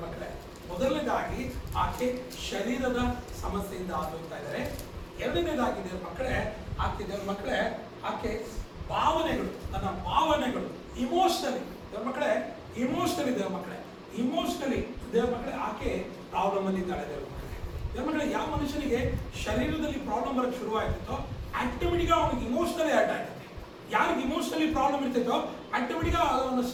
ಮಕ್ಕಳೇ. ಮೊದಲನೇದಾಗಿ ಆಕೆ ಶರೀರದ ಸಮಸ್ಯೆಯಿಂದ ಆಗೋಯ್ತಾ ಇದ್ದಾರೆ. ಎರಡನೇದಾಗಿ ದೇವರ ಮಕ್ಕಳೇ, ಆಕೆ ದೇವರ ಮಕ್ಕಳೇ ಆಕೆ ಭಾವನೆಗಳು, ತನ್ನ ಭಾವನೆಗಳು ಇಮೋಷನಲಿ ದೇವರ ಮಕ್ಕಳೇ, ಇಮೋಷನಲಿ ದೇವರ ಮಕ್ಕಳೇ, ಇಮೋಷನಲಿ ದೇವರ ಮಕ್ಕಳೇ ಆಕೆ ಪ್ರಾಬ್ಲಮ್ ಅಲ್ಲಿ ಇದ್ದಾಳೆ ದೇವರ ಮಕ್ಕಳೇ. ದೇವರ ಮಕ್ಕಳೇ, ಯಾವ ಮನುಷ್ಯನಿಗೆ ಶರೀರದಲ್ಲಿ ಪ್ರಾಬ್ಲಮ್ ಬರೋಕ್ಕೆ ಶುರುವಾಗ್ತಿತ್ತೋ ಆಟೋಮೆಟಿಕ್ ಅವನಿಗೆ ಇಮೋಷನಲಿ ಅಟ್ಯಾಕ್ ಆಗ್ತದೆ. ಯಾರಿಗೆ ಇಮೋಷನಲಿ ಪ್ರಾಬ್ಲಮ್ ಇರ್ತೈತೋ ಆಟೋಮೆಟಿಕ್ ಅವನ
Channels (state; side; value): identical; both; correlation 1.00